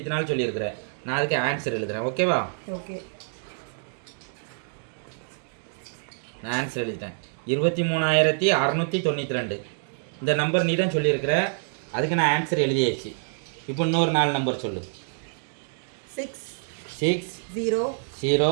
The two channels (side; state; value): left; silent; digital silence